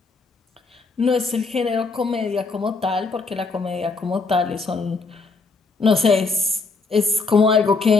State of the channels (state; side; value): quieter; right; 4.1 dB